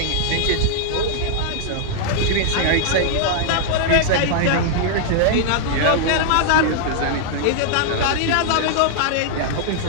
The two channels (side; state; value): both; different; correlation -0.01